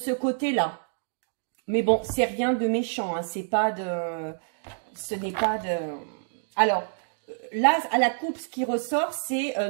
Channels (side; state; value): left; silent; digital silence